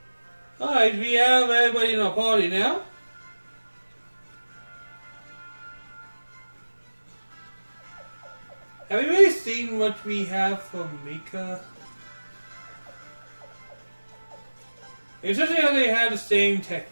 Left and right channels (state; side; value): inverted; both; correlation -1.00